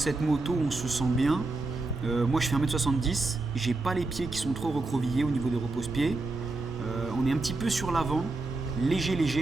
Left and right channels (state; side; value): quieter; left; 3.3 dB